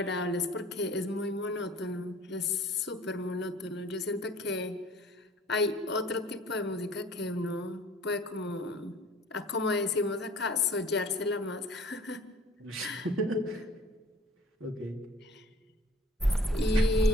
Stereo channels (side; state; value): both; normal; correlation 0.50